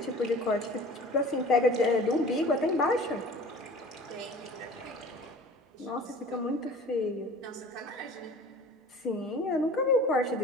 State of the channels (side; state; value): both; normal; correlation 0.43